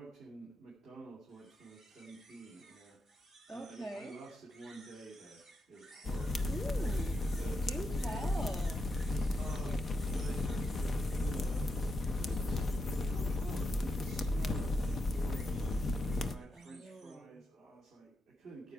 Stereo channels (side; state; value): both; normal; correlation 0.85